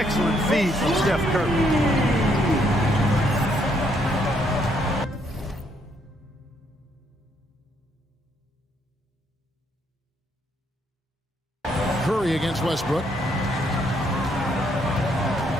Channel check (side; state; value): both; normal; correlation 0.72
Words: feed from Steph Curry. Curry against Westbrook.